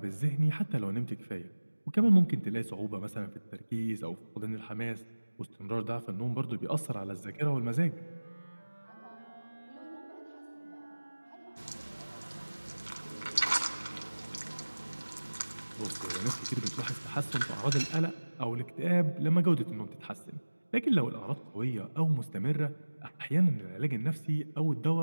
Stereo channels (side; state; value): both; inverted; correlation -1.00